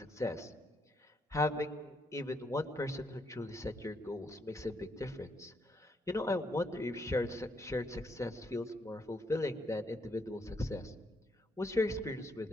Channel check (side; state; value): both; normal; correlation 0.75